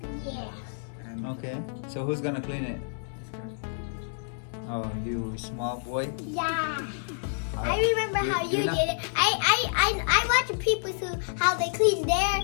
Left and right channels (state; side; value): silent; right; 59 dB below the other